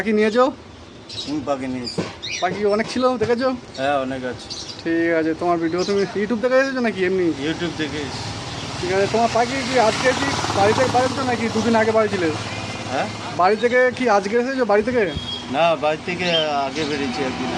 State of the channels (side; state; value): both; identical; correlation 1.00